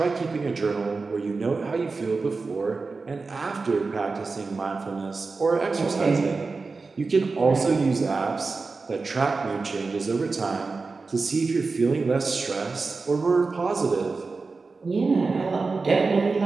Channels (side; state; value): left; quieter; 4.1 dB